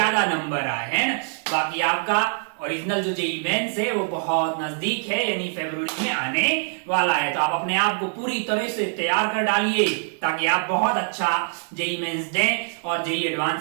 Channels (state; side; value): silent; left; digital silence